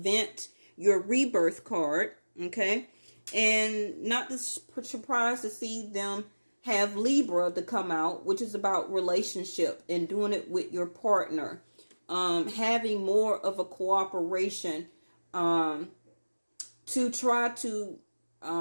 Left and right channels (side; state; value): both; inverted; correlation -1.00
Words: Your rebirth card. Okay. And not surprised to see them have Libra to come out, which is about relationship and doing it with your partner. Having more of a cooperation to try to